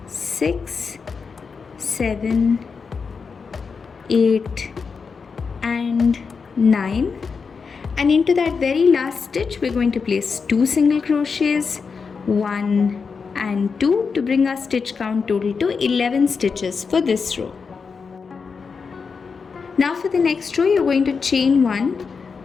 6, 7, 8 and 9, and into that very last stitch we're going to place 2 single crochets, 1 and 2, to bring our stitch count total to 11 stitches for this row. Now for the next row, you're going to chain 1,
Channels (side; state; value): right; quieter; 5.3 dB